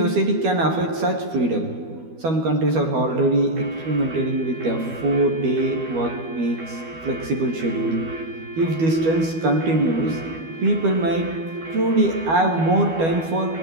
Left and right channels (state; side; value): late; left; 12 ms